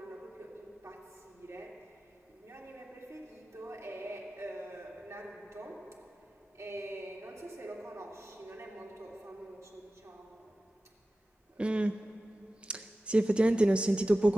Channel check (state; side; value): normal; both; correlation 0.95